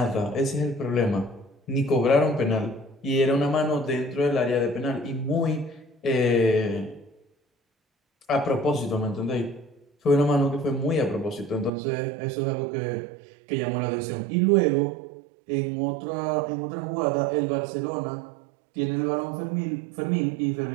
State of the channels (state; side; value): drops out; left; at 11.7 s